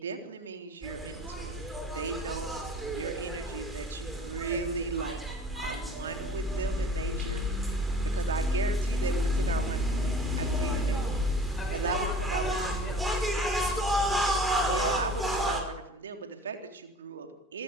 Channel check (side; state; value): both; normal; correlation 0.45